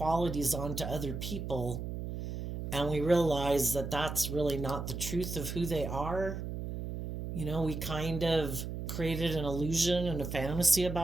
onto other people. And we realize that that's really not the truth of who they are. We kind of created an illusion and a fantasy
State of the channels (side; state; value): right; noise; hum, 5 dB below the sound